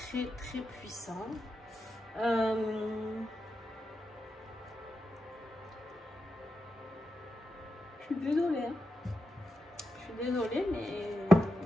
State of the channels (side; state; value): both; normal; correlation 0.88